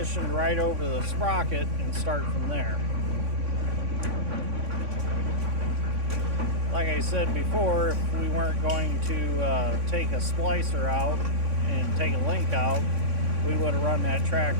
right over the sprocket and start from there. Like I said before, if we weren't going to take a splicer out and take a link out, we would have run that track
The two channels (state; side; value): late; left; 3.6 ms